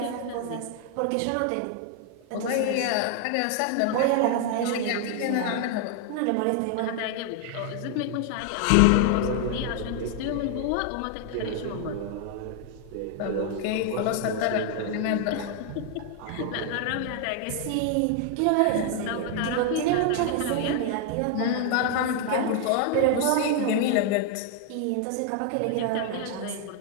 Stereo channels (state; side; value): different; both; correlation 0.00